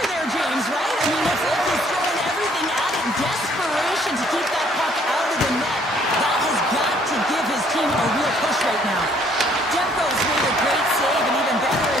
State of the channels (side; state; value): both; normal; correlation 0.63